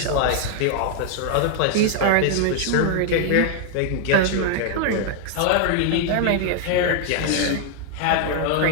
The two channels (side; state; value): both; different; correlation 0.00